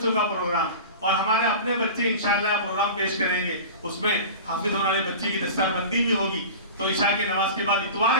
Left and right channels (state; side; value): inverted; both; correlation -0.34